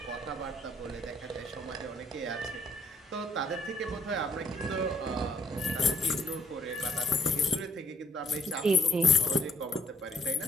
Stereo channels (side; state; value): both; normal; correlation 0.67